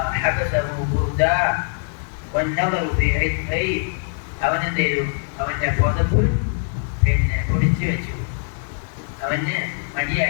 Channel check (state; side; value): silent; right; digital silence